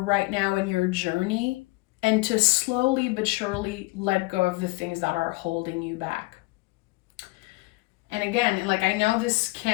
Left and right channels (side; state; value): right; quieter; 23.7 dB